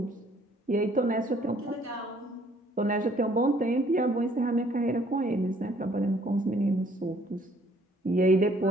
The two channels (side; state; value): both; normal; correlation 0.61